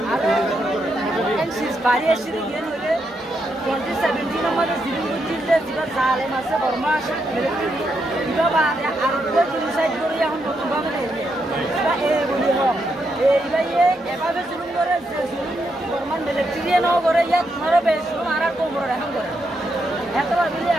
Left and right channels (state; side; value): normal; both; correlation 0.81